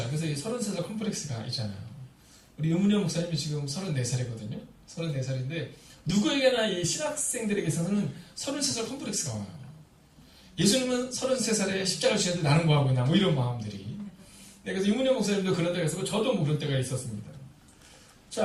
그래서 이 33살 컴플렉스가 있잖아요. 우리 의문현 목사님이 지금 34살이거든요. 34살인데 누구에게나 이 신학생들에게서는 33살 컴플렉스가 와요. 예수님은 33살에 십자가를 지는데 나는 뭐하고 있나 이런 마음들이. 네, 그래서 의문현 목사님도 그런 때가 있었고 저도 그런 때가 있었습니다.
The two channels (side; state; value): both; identical; correlation 1.00